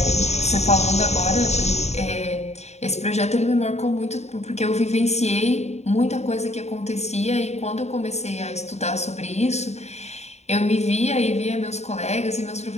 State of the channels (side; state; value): right; late; 0.32 ms